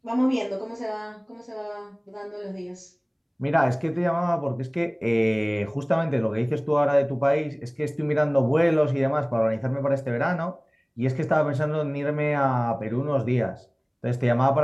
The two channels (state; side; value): identical; both; correlation 1.00